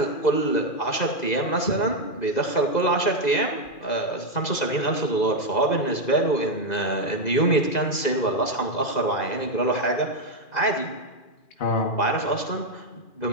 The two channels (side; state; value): right; late; 2.4 ms